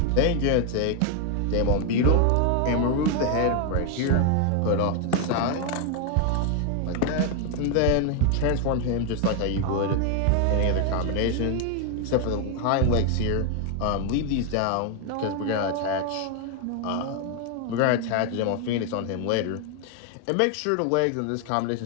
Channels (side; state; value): both; different; correlation 0.00